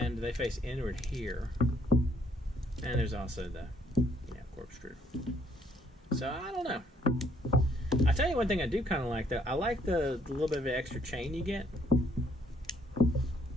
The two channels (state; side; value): normal; both; correlation 0.67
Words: they face inward here. And there's also the corkscrew. So I don't know. I tell you one thing I do kind of like though. I like the little bit of an extra chain you get.